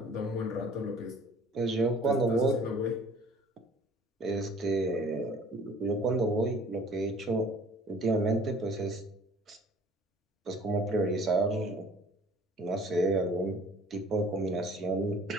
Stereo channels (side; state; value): both; normal; correlation 0.51